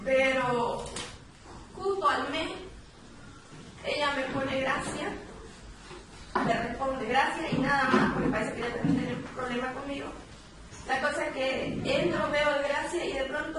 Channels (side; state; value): both; identical; correlation 1.00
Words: Pero justo al mes, ella me pone gracia, le responde gracia y nada más, porque parece que ella también tiene un problema conmigo. La cosa es que entro, veo el gracia y de